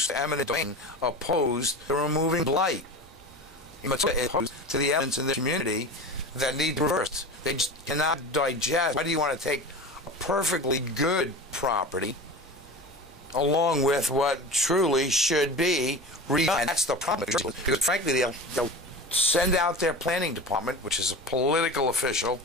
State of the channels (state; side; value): normal; both; correlation 0.31